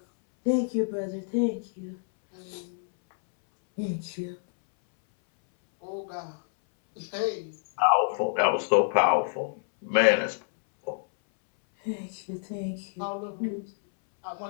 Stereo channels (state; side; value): silent; right; 60 dB below the other